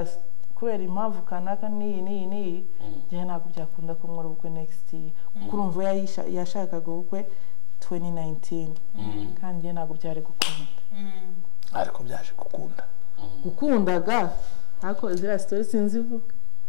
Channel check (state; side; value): quieter; right; 28.1 dB